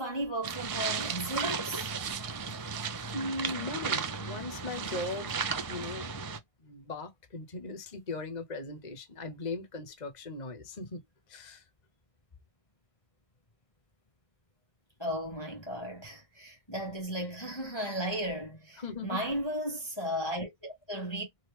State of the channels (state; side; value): late; right; 1.6 ms